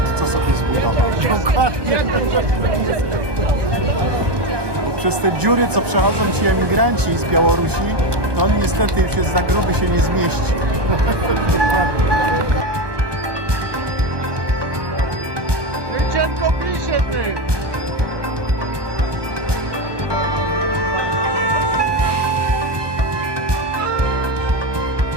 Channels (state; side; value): late; left; 1.2 ms